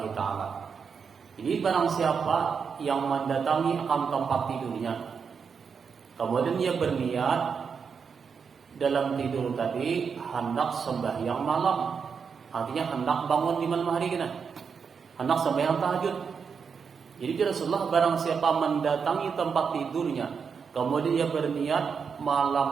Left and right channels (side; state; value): left; quieter; 6.1 dB